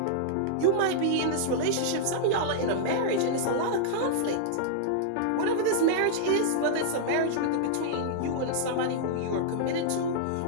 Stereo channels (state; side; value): different; both; correlation -0.02